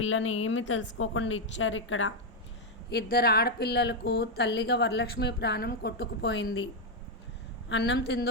ఏమీ తెలుసుకోకుండా ఇచ్చారు ఇక్కడ. ఇద్దరు ఆడపిల్లలకు తల్లిగా వరలక్ష్మి ప్రాణం కొట్టుకుపోయింది. అన్నం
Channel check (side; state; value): both; normal; correlation 0.02